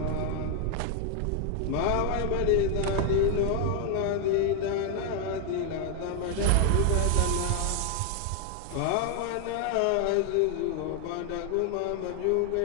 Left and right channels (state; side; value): different; both; correlation 0.00